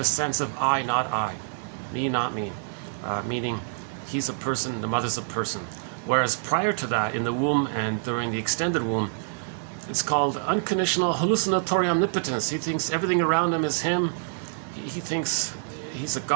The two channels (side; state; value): left; silent; digital silence